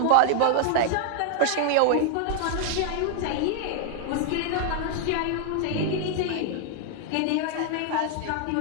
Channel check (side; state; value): both; different; correlation 0.00